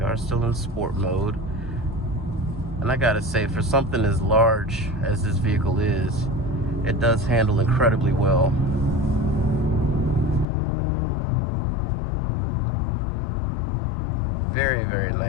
Are still in sport mode, and I gotta say, for something as large as this vehicle is, it does handle incredibly well. Very, very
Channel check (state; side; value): drops out; right; at 10.5 s